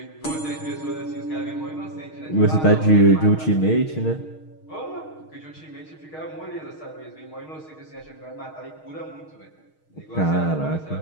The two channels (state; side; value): late; right; 6.4 ms